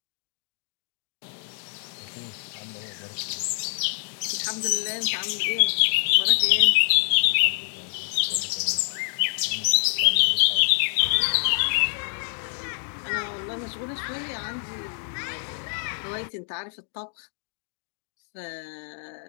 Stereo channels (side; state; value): right; silent; digital silence